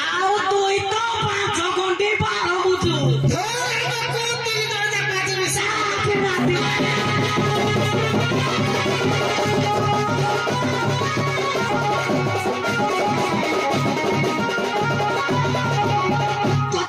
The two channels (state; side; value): identical; both; correlation 1.00